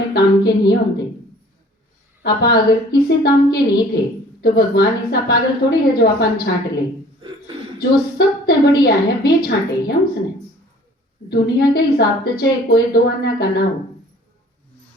काम के नहीं होते, आप अगर किसी काम के नहीं थे तो भगवान ऐसा पागल थोड़ी है जो अपन छांट ले। जो सबसे बढ़िया है वे छांटे हैं उसने। दुनिया के हिसाब से चाहे कोई दो अन्ना का ना हो,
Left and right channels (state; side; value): normal; both; correlation 0.52